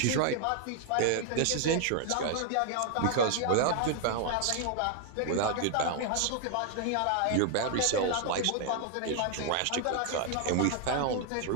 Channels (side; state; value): both; different; correlation 0.00